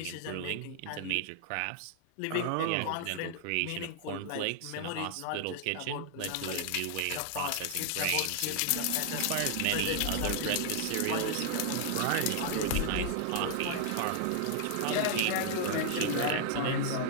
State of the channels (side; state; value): both; different; correlation 0.00